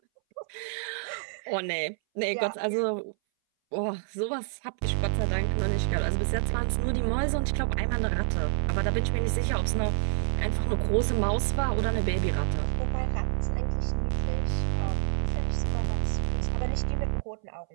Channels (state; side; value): silent; left; 59 dB below the other